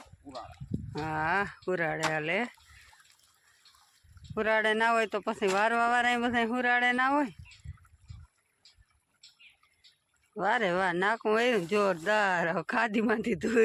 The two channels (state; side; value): identical; both; correlation 1.00